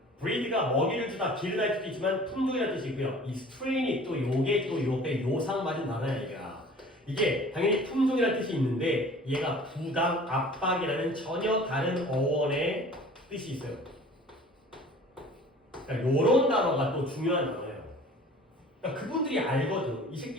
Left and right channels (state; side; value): normal; both; correlation 0.46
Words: breed가 먹이를 주다, 기르다의 뜻도 있지만 품종이라는 뜻이고요. 이 strain이 또 요게 또 요게 요상 맞은 단어야 얘가. 이게 당연히 품종이라는 뜻이 있는데 얘가 부당, 압박이라는 전혀 다른 어원의 뜻이 있어요. 그러니까 요런 단어가 또 중요한 단어예요. 그러니까 그분들이 알거든. 이